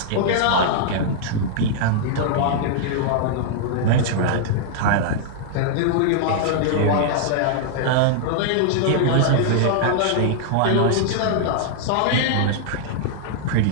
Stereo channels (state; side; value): different; both; correlation -0.01